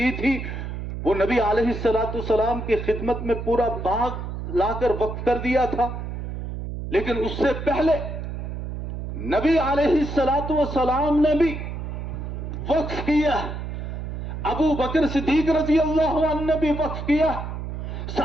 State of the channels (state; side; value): noise; right; hum, 6 dB below the sound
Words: تھی وہ نبی علیہ السلام کی خدمت میں پورا باغ لا کر وقف کر دیا تھا، لیکن اس سے پہلے نبی علیہ السلام نے بھی وقف کیا، ابو بکر صدیق رضی اللہ عنہ نے بھی وقف کیا،